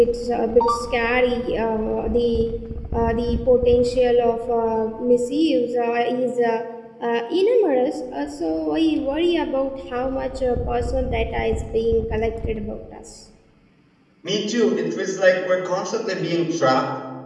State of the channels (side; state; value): both; identical; correlation 1.00